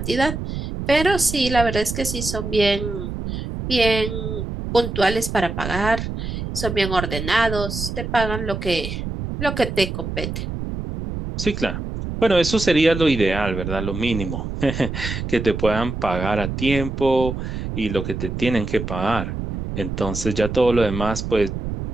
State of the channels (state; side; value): noise; right; rumble, 5 dB below the sound